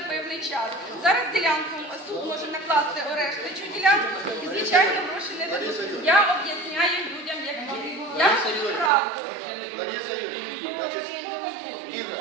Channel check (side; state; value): left; drops out; at 8.9 s